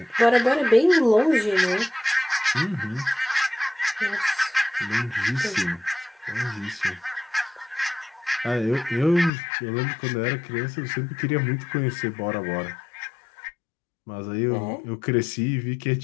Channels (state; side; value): drops out; right; at 9.3 s